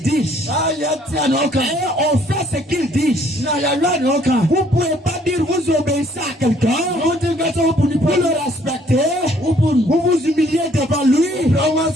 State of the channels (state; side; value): normal; both; correlation 0.62